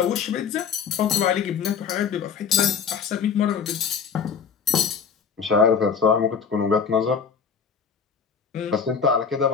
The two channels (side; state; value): right; quieter; 6.5 dB